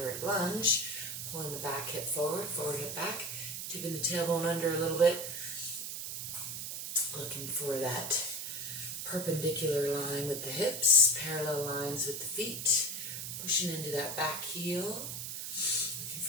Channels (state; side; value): noise; right; hiss, 5 dB below the sound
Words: lunge. Pulling the back hip forward, forward hip back. Tipping the tailbone under a little bit. looking for that perpendicular line with the hips, parallel lines with the feet, pushing into that back heel, looking